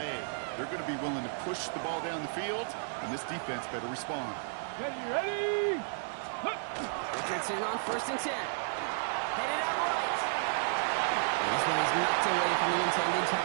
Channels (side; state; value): left; silent; 56 dB below the other